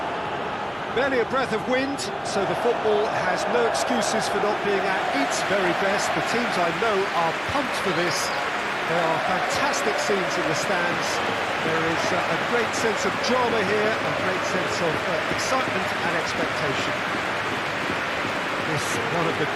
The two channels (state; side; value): identical; both; correlation 1.00